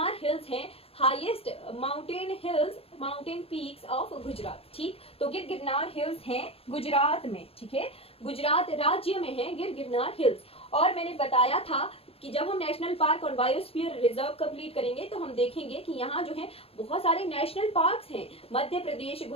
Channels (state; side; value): late; right; 0.28 ms